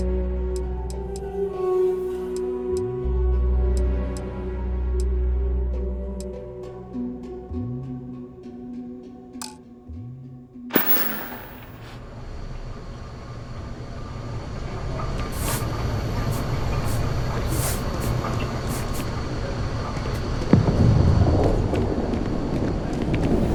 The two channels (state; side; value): identical; both; correlation 1.00